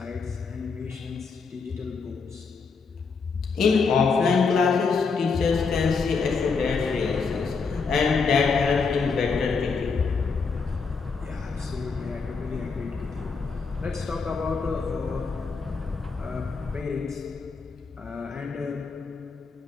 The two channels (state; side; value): quieter; right; 4.9 dB